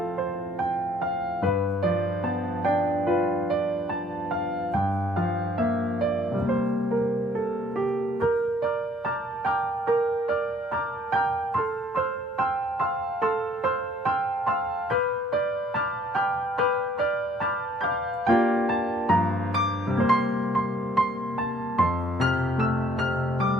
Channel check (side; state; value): both; normal; correlation 0.61